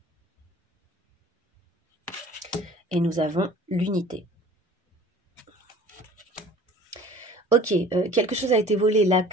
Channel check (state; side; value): normal; both; correlation 0.46